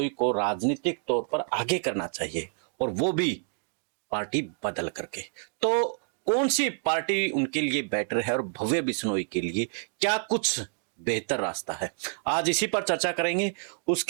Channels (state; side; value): silent; left; digital silence